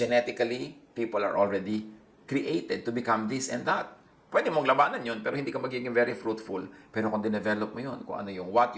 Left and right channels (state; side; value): identical; both; correlation 1.00